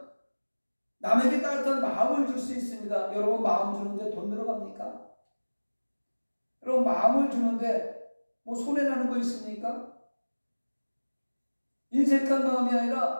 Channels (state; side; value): inverted; both; correlation -1.00